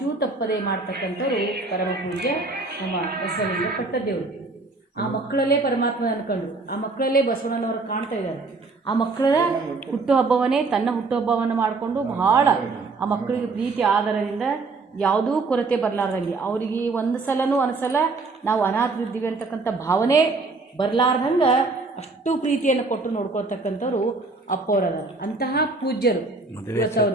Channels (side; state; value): left; quieter; 3.8 dB